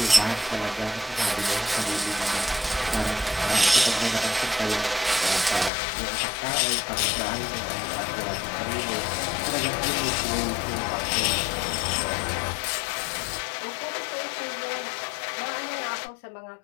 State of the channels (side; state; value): right; drops out; at 5.7 s